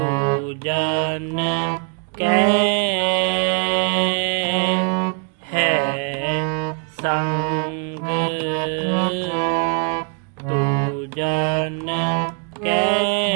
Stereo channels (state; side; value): quieter; left; 39.2 dB